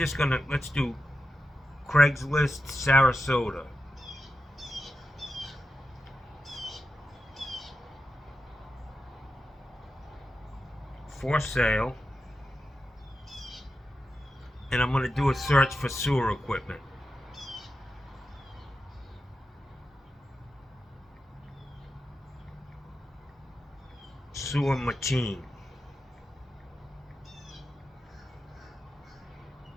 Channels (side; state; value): both; normal; correlation 0.90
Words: gonna, let's do Craigslist, Sarasota. For sale. And I'm gonna do a search for sewer equipment. Sewer machine.